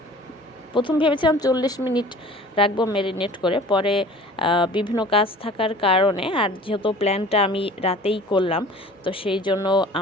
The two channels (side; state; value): both; normal; correlation 0.45